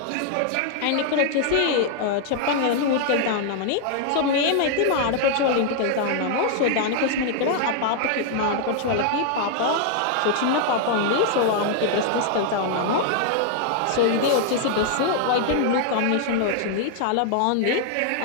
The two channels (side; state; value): both; different; correlation 0.00